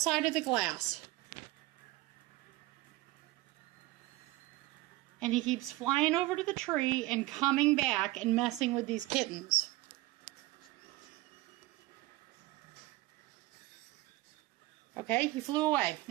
of the glass. And he keeps flying over to the tree and coming back and messing with these kittens. Okay, he flew away.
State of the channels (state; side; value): quieter; left; 19.1 dB